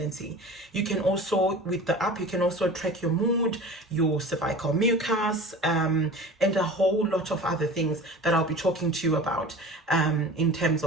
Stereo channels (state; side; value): normal; both; correlation 0.38